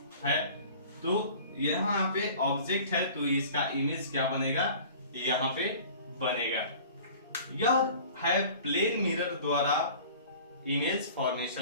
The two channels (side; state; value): both; inverted; correlation -0.45